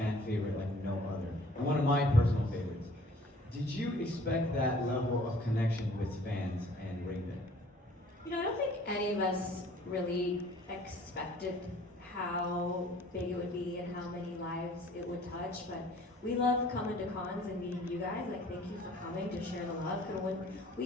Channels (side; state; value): both; normal; correlation 0.53